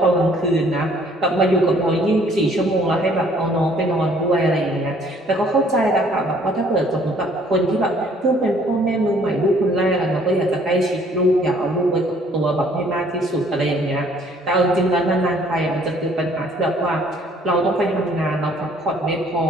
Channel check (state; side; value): normal; both; correlation 0.59